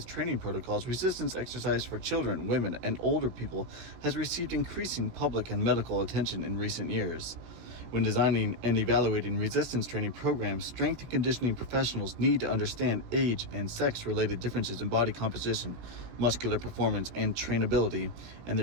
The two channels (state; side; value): late; left; 17 ms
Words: training protocols, resistance exercise for children, women, and older people has received increasing public and medical attention in recent years. When designing and evaluating resistance training programs, strength and conditioning professionals need to understand age and sex-related differences in body composition, muscular performance, and trainability, and